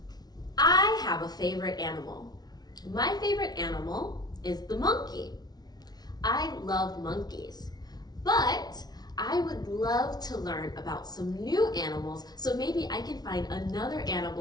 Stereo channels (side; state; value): right; late; 0.19 ms